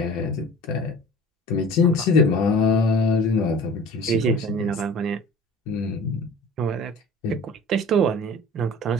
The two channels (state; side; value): normal; both; correlation 0.42